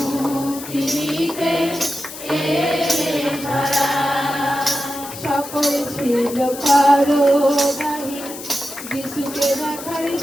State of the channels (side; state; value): left; noise; hiss, 12 dB below the sound